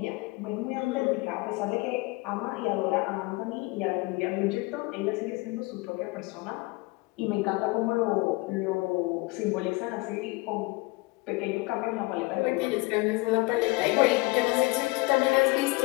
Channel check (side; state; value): right; quieter; 24.1 dB